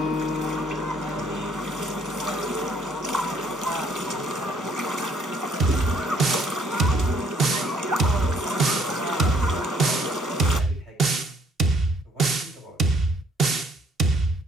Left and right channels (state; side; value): normal; both; correlation 0.64